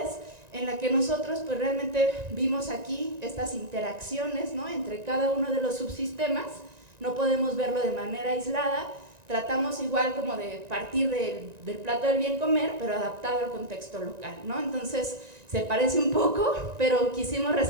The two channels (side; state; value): left; late; 1.9 ms